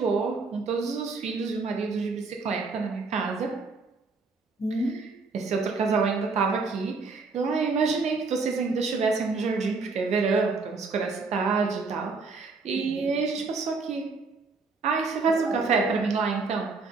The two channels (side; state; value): left; quieter; 4.2 dB